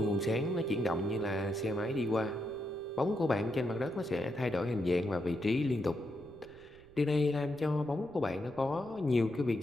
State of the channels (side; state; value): right; noise; rumble, 25 dB below the sound